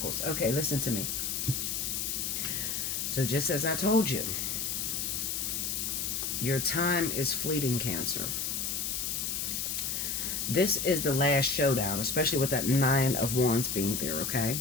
Okay, listen to me. So just as I told you, your time is fleeting, Cancer. This is the last showdown, especially with that Nine of Wands being there, okay?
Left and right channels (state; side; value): noise; left; hiss, 1 dB below the sound